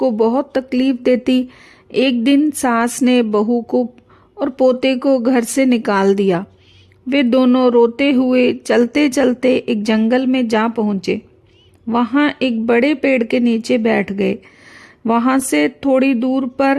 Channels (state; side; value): identical; both; correlation 1.00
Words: बहुत तकलीफ देती। एक दिन सास ने बहू को और पोते को घर से निकाल दिया। वे दोनों रोते हुए चलते चलते एक जंगल में जा पहुँचे। वहाँ एक बड़े पेड़ के नीचे बैठ गए। वहाँ से थोड़ी दूर